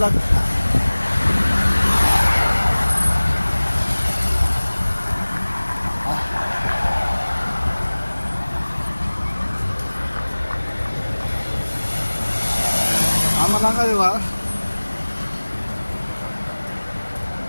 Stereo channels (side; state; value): both; inverted; correlation -1.00